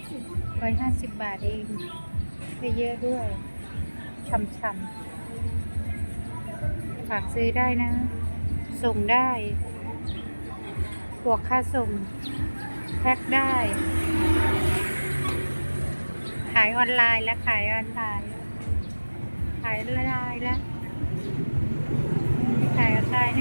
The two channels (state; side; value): inverted; both; correlation -1.00